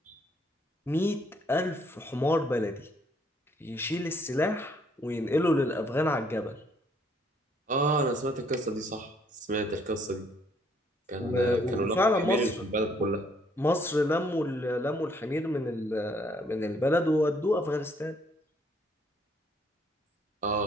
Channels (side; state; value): both; normal; correlation 0.66